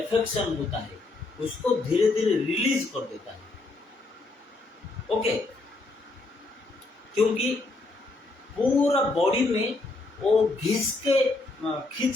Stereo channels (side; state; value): right; quieter; 3.2 dB